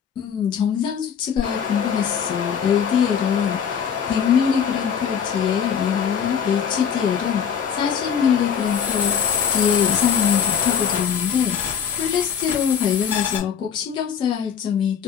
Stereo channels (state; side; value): quieter; right; 7.6 dB